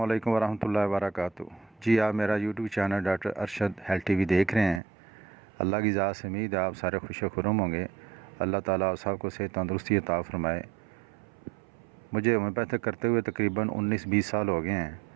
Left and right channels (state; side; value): drops out; left; at 4.8 s